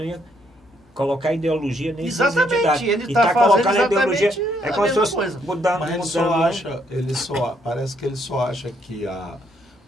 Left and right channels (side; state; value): both; normal; correlation 0.72